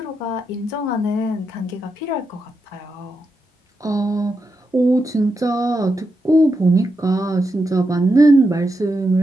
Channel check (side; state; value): both; normal; correlation 0.85